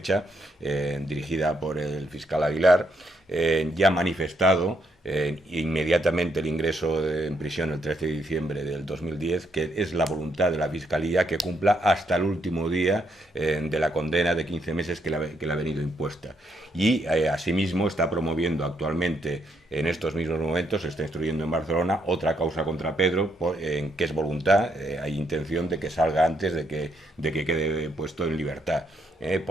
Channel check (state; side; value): normal; both; correlation 0.75